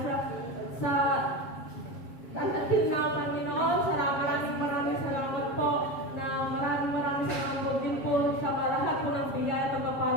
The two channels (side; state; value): right; late; 7.4 ms